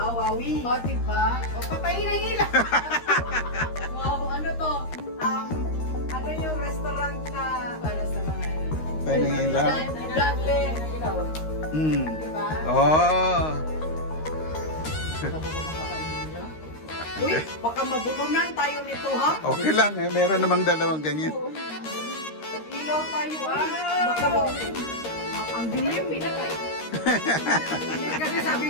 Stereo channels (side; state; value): right; late; 13 ms